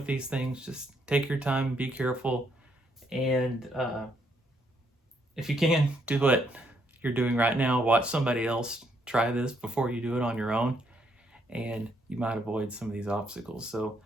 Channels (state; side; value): normal; both; correlation 0.73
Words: these things. Just take your time, be careful. And if you can, do what you're doing right now. Watch somebody else try this before you do it on your own, and you might avoid some of these obstacles. So